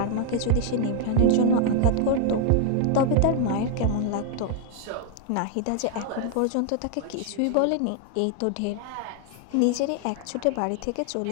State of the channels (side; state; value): both; different; correlation 0.00